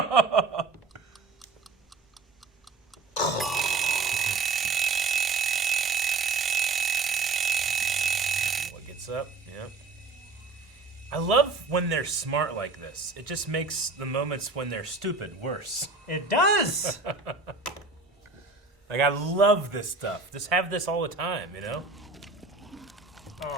What gets up? Yep. I love when they're smart like this. It just makes the moments when they're stupid worse. It does! Like, I love this stuff. Just have this all the time,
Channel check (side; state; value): left; quieter; 3.9 dB